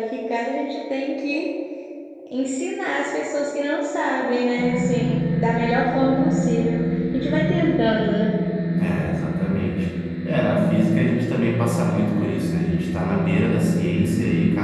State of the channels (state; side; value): identical; both; correlation 1.00